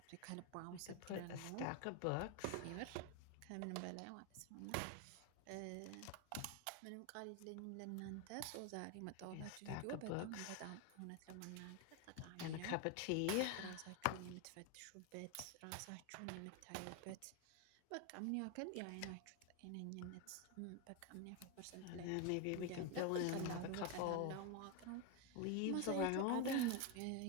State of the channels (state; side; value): different; both; correlation 0.02